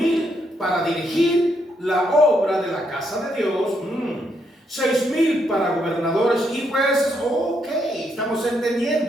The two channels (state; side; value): normal; both; correlation 0.77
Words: para dirigir la obra de la casa de Dios, 6,000 para gobernadores y jueces. Ok, estamos